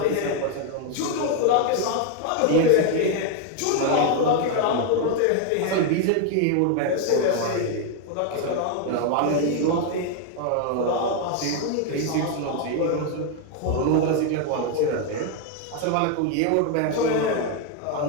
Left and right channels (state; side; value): different; both; correlation 0.01